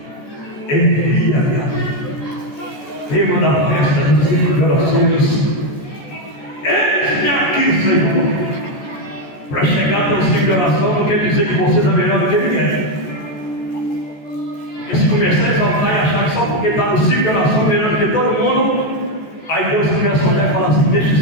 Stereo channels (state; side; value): late; right; 14 ms